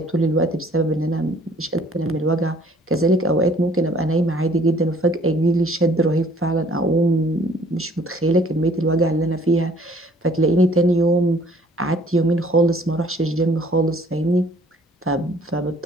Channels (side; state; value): both; normal; correlation 0.57